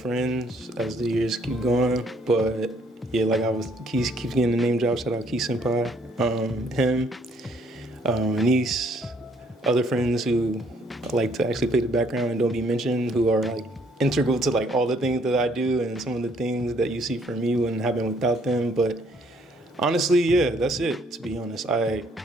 as the years keep going. But yeah, like Keith keeps getting the name drop. Shout out Keith Senpai, him, Anise, other friends who like to actually play the background and don't be mentioned, who are like integral to like all the things that I do, and some of the things that you see from me wouldn't happen without them. But honestly, yeah, that's it. To be honest, I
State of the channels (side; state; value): both; normal; correlation 0.65